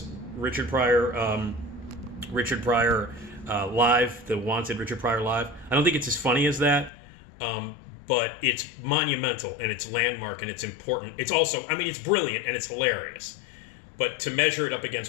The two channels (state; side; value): drops out; right; at 6.9 s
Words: Richard Pryor Live, the Wanted Richard Pryor Live. I don't think it's as funny as that, but it's monumental, and it's landmark, and it's important. It's also... it's brilliant, and it's hilarious. But to measure it up